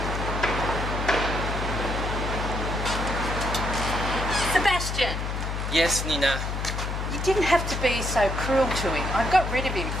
Sebastian, yes, Nina. you didn't have to be so cruel to him. I got rid of him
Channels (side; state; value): left; noise; hum, 3 dB below the sound